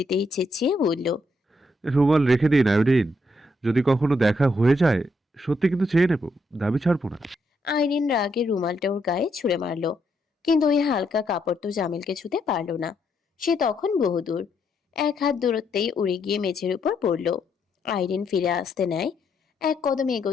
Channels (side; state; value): both; normal; correlation 0.76